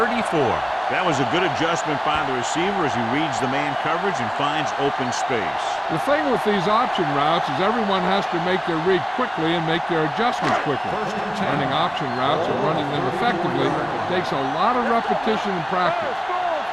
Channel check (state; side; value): identical; both; correlation 1.00